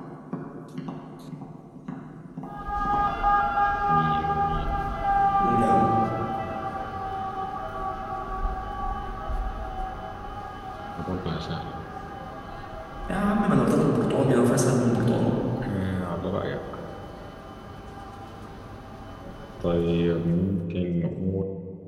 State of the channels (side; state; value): both; identical; correlation 1.00